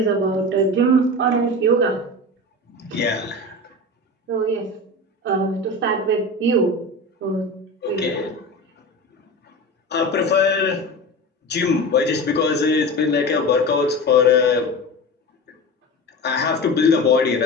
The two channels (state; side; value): normal; both; correlation 0.29